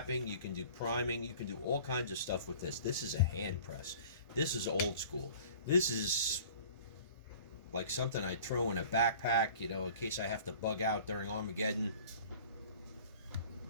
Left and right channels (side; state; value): both; inverted; correlation -0.46